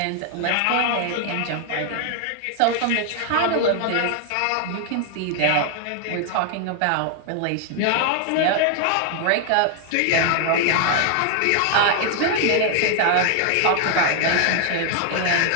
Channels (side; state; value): both; different; correlation 0.00